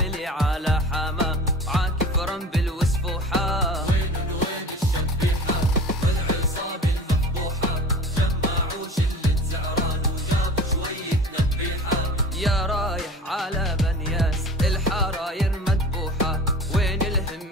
على حما عاكف رنبل وسفوحة. وين الشبيحة والعصابة المفضوحة، جمعوا شلة زعران وجابوا شوية نبيحة. يا رايح على بنياس الحراير مذبوحة، وين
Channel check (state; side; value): normal; both; correlation 0.38